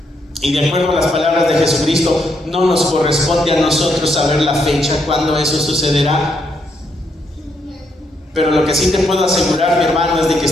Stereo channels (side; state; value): both; normal; correlation 0.76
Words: y de acuerdo a las palabras de Jesucristo, no nos corresponde a nosotros saber la fecha cuándo eso sucederá. Pero lo que sí te puedo asegurar, mi hermano, es de que